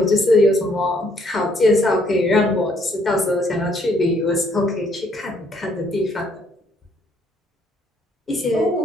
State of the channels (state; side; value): normal; both; correlation 0.67